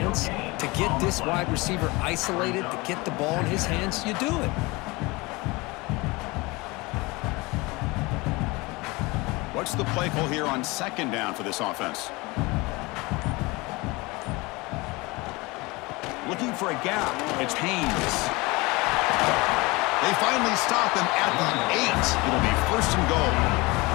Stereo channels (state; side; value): quieter; right; 23.8 dB